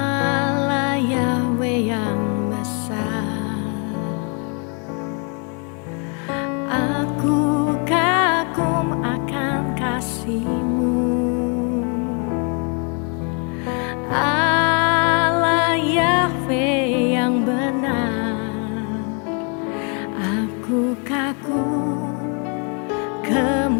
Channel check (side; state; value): right; quieter; 37.2 dB